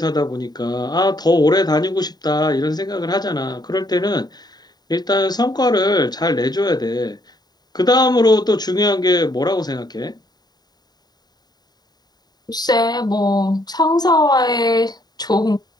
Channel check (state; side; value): late; right; 0.20 ms